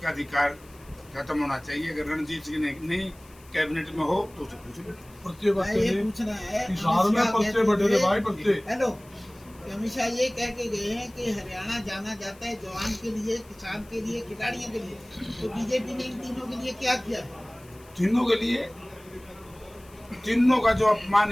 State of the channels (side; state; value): left; noise; hiss, 26 dB below the sound